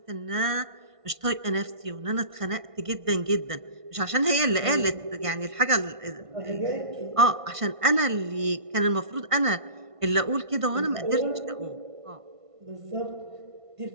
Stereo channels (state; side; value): late; left; 1.5 ms